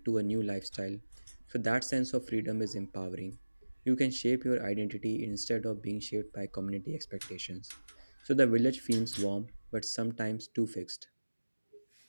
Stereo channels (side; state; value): both; inverted; correlation -1.00